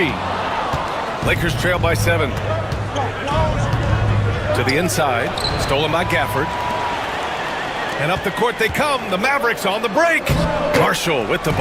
Lakers trail by 7. To the inside. Stolen by Gafford. And up the court they come. The Mavericks on the break. Marshall with the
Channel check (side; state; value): both; identical; correlation 1.00